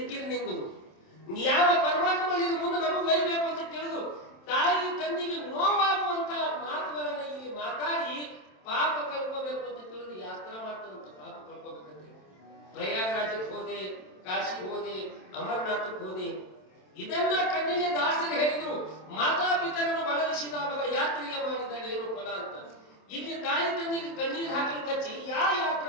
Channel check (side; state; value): right; late; 27 ms